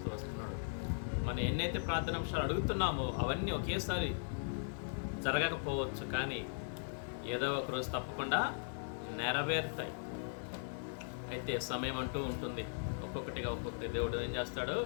వస్తున్నాడు. మనం ఎన్నైతే ప్రార్థనాంశాలు అడుగుతున్నామో అవన్నీ ఒకేసారి జరగకపోవచ్చు, కానీ ఏదో ఒక రోజు తప్పకుండా నెరవేరుతాయి. అయితే సమయం అంటూ ఉంటుంది. ఒక్కొక్కటి దేవుడు ఏం చేస్తాడు?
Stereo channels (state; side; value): silent; right; digital silence